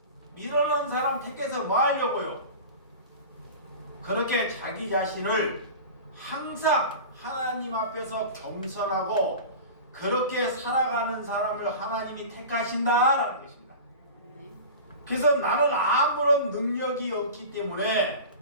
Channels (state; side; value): inverted; both; correlation -0.34